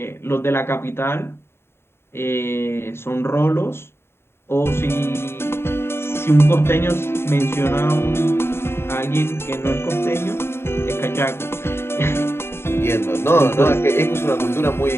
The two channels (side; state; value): right; late; 0.12 ms